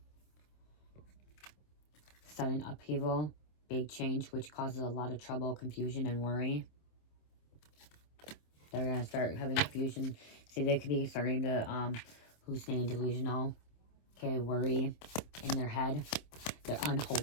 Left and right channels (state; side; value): late; right; 27 ms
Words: Sudden upheaval. Big change, which causes a lot of trouble, confusion, and worry. They're going to start having confusion. See, they could be starting to hallucinate, delusional. Okay, worry in their head. They're